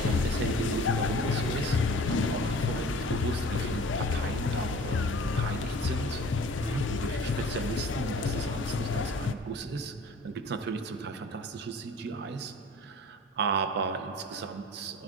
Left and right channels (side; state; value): both; normal; correlation 0.45